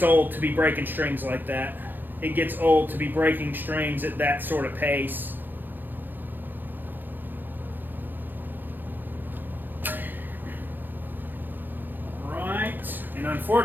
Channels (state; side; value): late; left; 0.090 ms